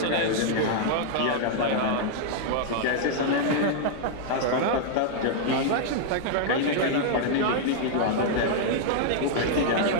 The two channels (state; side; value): different; both; correlation -0.01